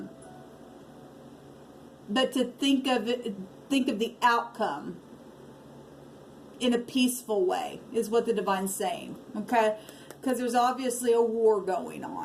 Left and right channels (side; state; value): both; identical; correlation 1.00